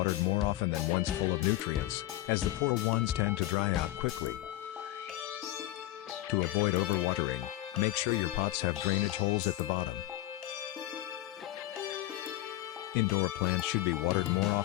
more often than ones full of nutrients, as the poor ones tend to dry out quickly. To avoid overwatering, make sure your pots have drainage holes at the bottom. Indoor plants should be watered more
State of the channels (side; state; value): right; quieter; 15.9 dB